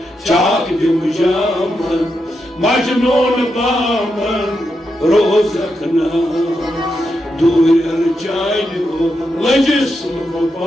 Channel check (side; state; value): both; normal; correlation 0.85